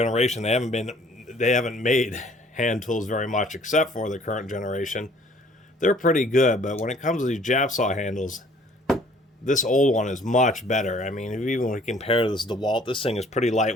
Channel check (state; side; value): normal; both; correlation 0.57